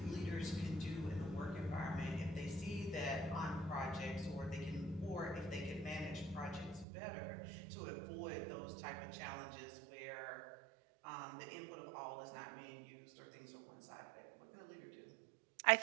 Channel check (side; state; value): left; drops out; at 6.9 s